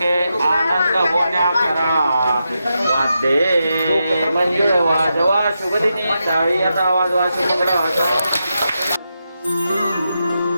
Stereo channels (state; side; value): inverted; both; correlation -0.86